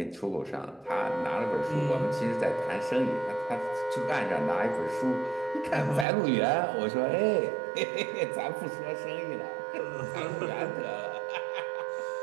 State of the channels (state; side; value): drops out; left; at 6.1 s